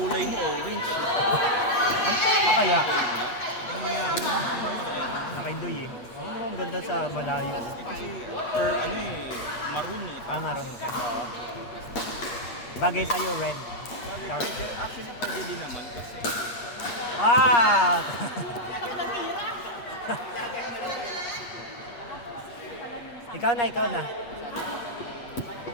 mo, orange. Ang tama kaya? Nakidoy eh. Ang ganda sa malayo. Kasi, maroon eh. Ah, maroon ka. Oo. Bagay sa'yo, red. Dark. Actually, pwede din naman kasi. Ah! Ikaw na, ikaw na.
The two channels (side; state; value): right; late; 8.5 ms